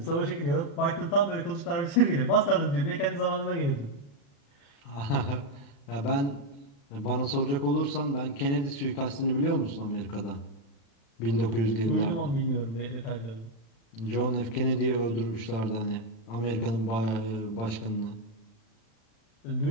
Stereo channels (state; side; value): late; right; 35 ms